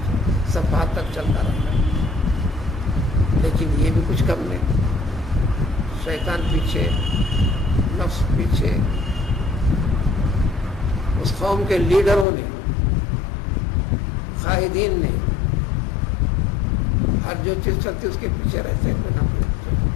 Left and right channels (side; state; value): right; drops out; at 12.2 s